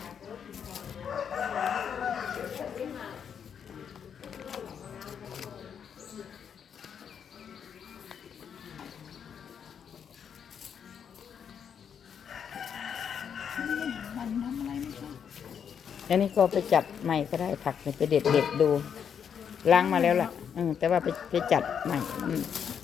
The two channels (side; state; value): right; quieter; 7.7 dB